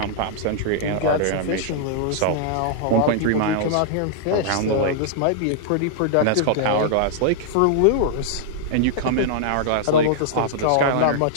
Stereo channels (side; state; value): both; different; correlation -0.01